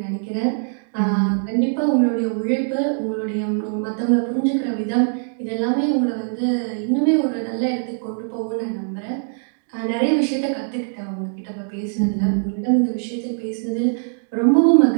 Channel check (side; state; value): left; silent; digital silence